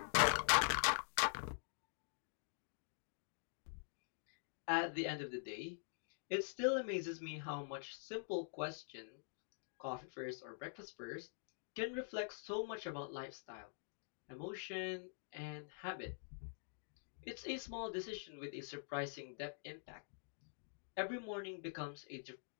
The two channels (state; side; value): silent; right; digital silence